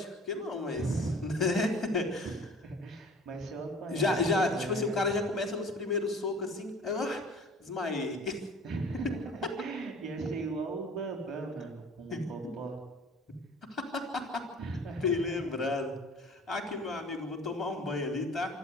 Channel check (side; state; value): both; normal; correlation 0.45